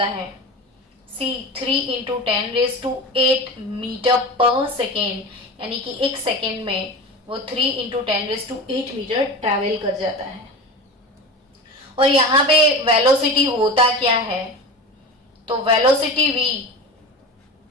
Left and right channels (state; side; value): normal; both; correlation 0.29